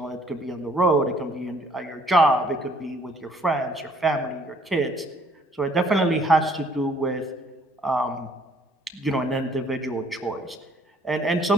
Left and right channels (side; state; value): both; normal; correlation 0.61